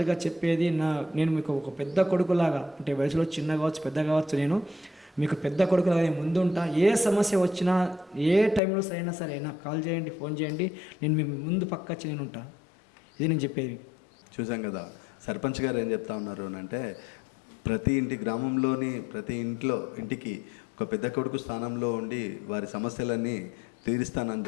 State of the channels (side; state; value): right; drops out; at 8.6 s